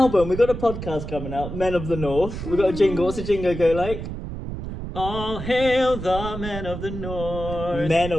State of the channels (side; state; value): right; noise; rumble, 7 dB below the sound